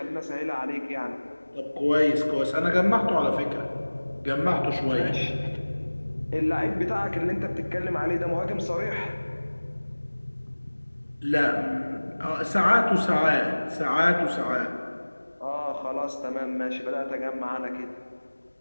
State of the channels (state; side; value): inverted; both; correlation -1.00